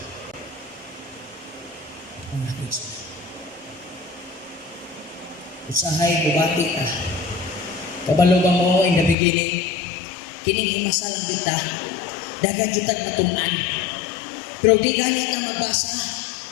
Ang nakikita. Usahay bubati ka. Kabalo ba mo in the beginning? Kining himasa lang kita. Dagan jutag matunan. Pero di ganit ang magbasa.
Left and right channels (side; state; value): right; drops out; at 9.2 s